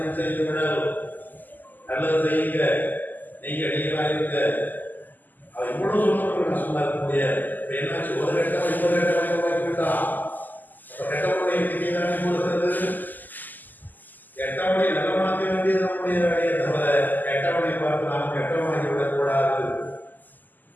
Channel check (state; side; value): late; right; 0.085 ms